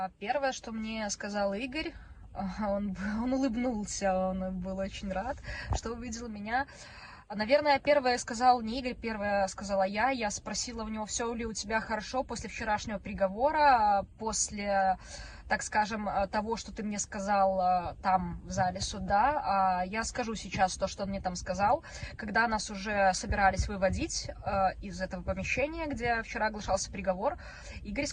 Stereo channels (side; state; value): both; identical; correlation 1.00